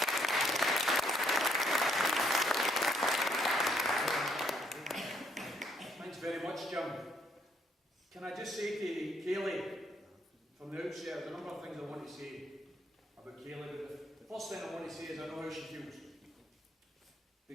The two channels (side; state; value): both; normal; correlation 0.69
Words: Thanks very much, Jim. Can I just say to Kayleigh, from the outset, there's a number of things I want to say about Kayleigh, but the first thing I want to say is I know how she feels.